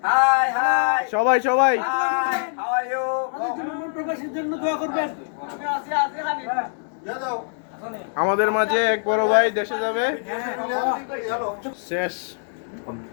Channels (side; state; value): right; silent; digital silence